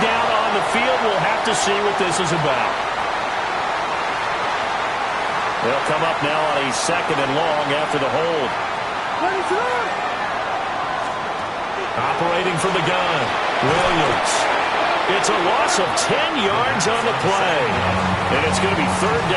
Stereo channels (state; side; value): identical; both; correlation 1.00